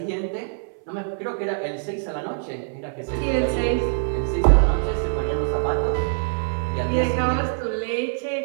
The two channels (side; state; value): left; silent; 61 dB below the other